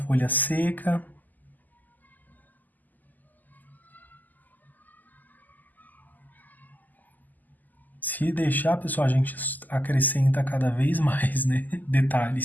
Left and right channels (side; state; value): right; late; 0.084 ms